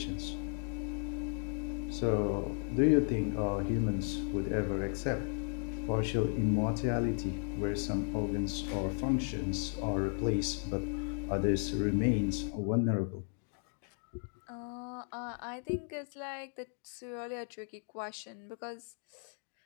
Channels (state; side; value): silent; right; 54 dB below the other